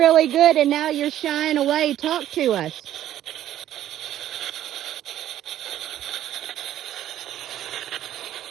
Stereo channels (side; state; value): left; quieter; 12.1 dB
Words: good and now you're shying away. Talk to us.